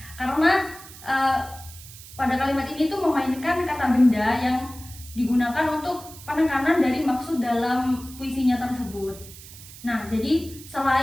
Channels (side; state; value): right; noise; hiss, 17 dB below the sound